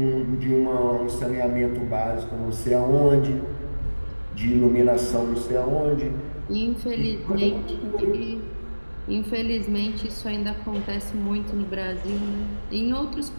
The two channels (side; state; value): both; inverted; correlation -1.00